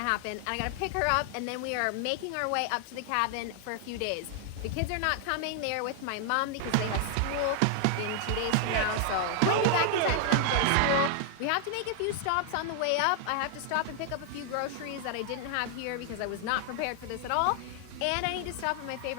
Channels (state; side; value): different; both; correlation 0.00